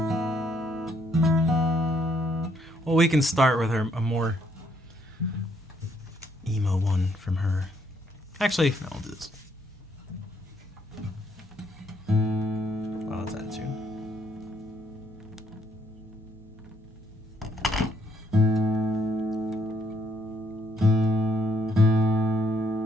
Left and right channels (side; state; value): both; normal; correlation 0.70